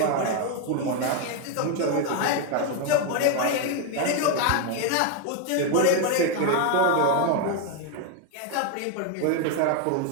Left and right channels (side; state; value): both; different; correlation 0.01